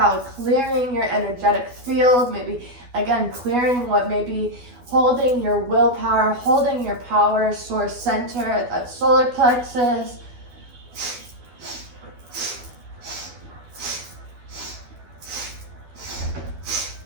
clearing your energetic field, maybe again clearing what may be holding your willpower, holding your power source center at that solar plexus.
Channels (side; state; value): left; late; 12 ms